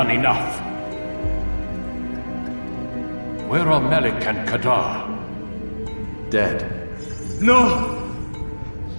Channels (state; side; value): inverted; both; correlation -1.00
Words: enough. Where are Malik and Kadar? Dead. No!